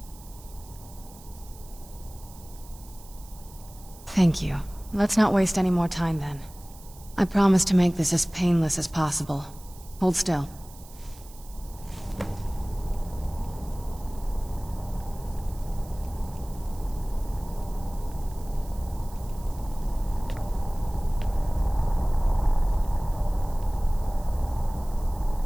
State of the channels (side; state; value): right; noise; hiss, 21 dB below the sound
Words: Thank you. Let's not waste any more time then. I promise to make this as painless as possible. Hold still.